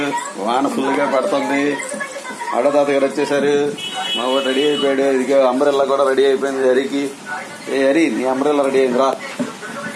వాన full గా పడుతుంది. ఆడతాత గారు వచ్చేసారు. మా వాడు రెడీ అయిపోయాడు. ఇదిగో అంబ్రెల్లా కూడా రెడీ అయిపోయింది హరికి. ఏ హరి, నీ అంబ్రెల్లా రెడీ అయింది రా.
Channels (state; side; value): identical; both; correlation 1.00